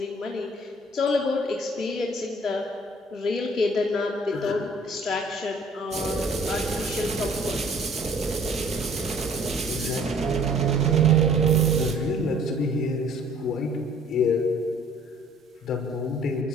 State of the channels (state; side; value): normal; both; correlation 0.55